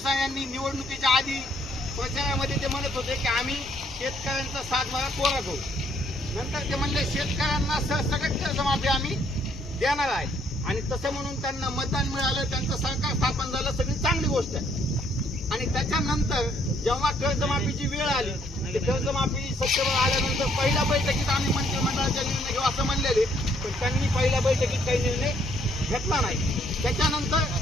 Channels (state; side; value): normal; both; correlation 0.67